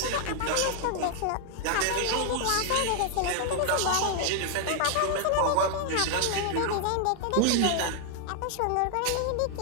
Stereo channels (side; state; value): both; different; correlation 0.00